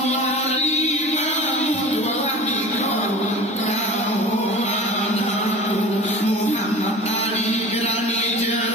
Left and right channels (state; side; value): normal; both; correlation 0.38